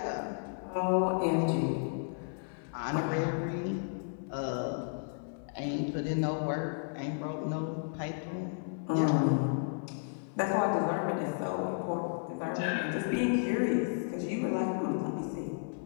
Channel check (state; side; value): silent; right; digital silence